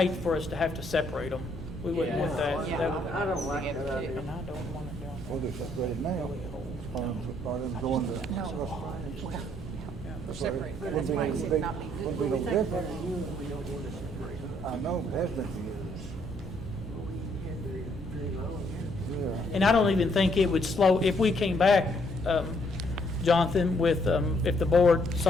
for us to have to separate them. We wouldn't want that. Yeah, That would- I don't like that idea. And I don't want to do them. Well, they're separated now. Rather than going to. We're separated. Wouldn't be no big- wouldn't be no difference. I know, it has been for years. Yeah. And I don't even think it would slow, if we came back, Jonathan, with, if the board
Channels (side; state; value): both; normal; correlation 0.69